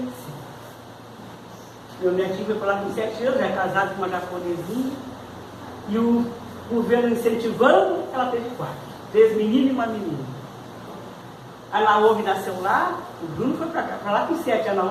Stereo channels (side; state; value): both; identical; correlation 1.00